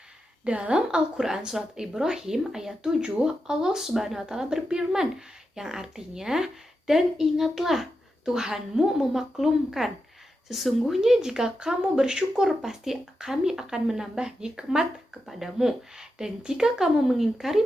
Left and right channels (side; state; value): both; normal; correlation 0.88